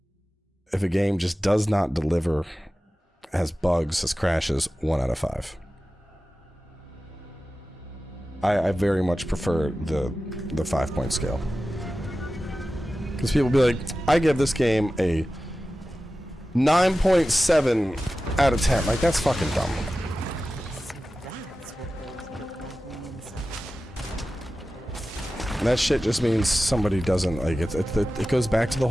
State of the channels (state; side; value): normal; both; correlation 0.95